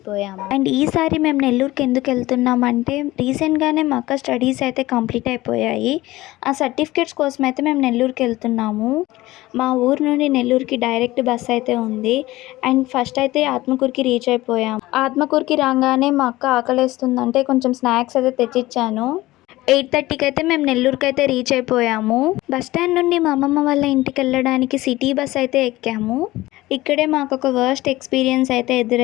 అండ్ ఈసారి మేము నెల్లూరుకి ఎందుకు వెళ్తున్నామంటే రీసెంట్గానే మా అక్క స్టడీస్ అయితే కంప్లీట్ అయిపోయాయి. ఆ సర్టిఫికేట్స్ కోసం అయితే మేము నెల్లూరుకి వెళ్తున్నాము. మా ఊరు నుండి నెల్లూరుకి డైరెక్ట్ బస్ అయితే ఉంది. అండ్ ఫస్ట్ అయితే ఆత్మకూరుకి రీచ్ అయిపోయాము. ఆత్మకూరుకి రాగానే మా అక్క ఆకలేస్తుందంటే కొంచెం స్నాక్స్ అయితే తెచ్చిచ్చాను. 8:30కి అయితే మేము నెల్లూరుకి అయితే రీచ్ అయిపోయాము. బస్ స్టాండ్ నుండి మా అమ్మమ్మ వాళ్ళ ఇంటికి వెళ్ళడానికి సిటీ బస్ అయితే ఎక్కాము. ఇక్కడే మాకు ఒక వర్స్ట్ ఎక్స్పీరియన్స్ అయితే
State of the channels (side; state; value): right; quieter; 18.1 dB